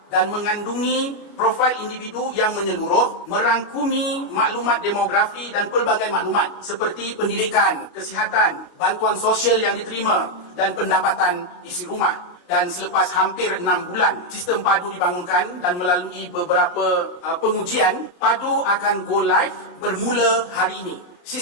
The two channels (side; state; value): right; late; 29 ms